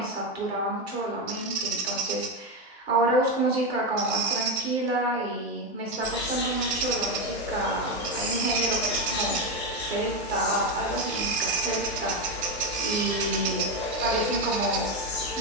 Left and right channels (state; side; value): normal; both; correlation 0.11